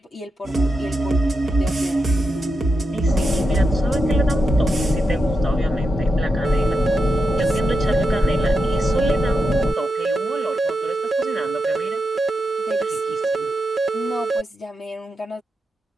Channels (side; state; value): both; normal; correlation 0.87